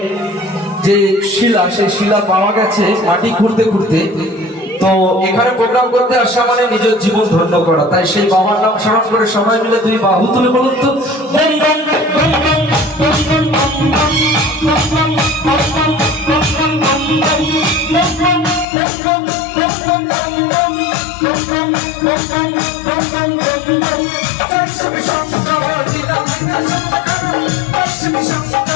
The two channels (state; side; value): drops out; right; at 18.7 s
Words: যে শিলা, সেই শিলা পাওয়া গেছে মাটি খুঁড়তে খুঁড়তে। তো এখানে প্রোগ্রাম করতে আসা মানে নিজের জীবন ধন্য করা। তাই সেই বাবার নাম স্মরণ করে সবাই মিলে দুই বাহু তুলে বলুন তো দেখবেন